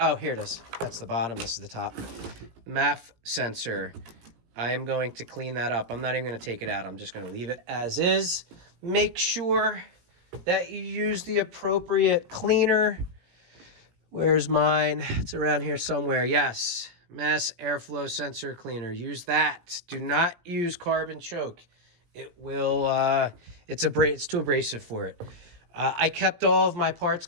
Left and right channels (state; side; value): late; left; 17 ms